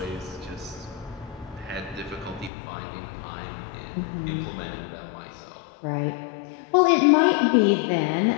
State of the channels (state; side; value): drops out; right; at 2.5 s